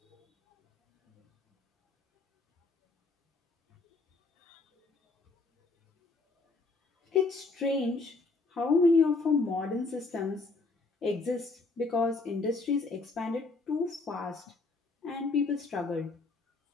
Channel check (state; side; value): quieter; right; 3.6 dB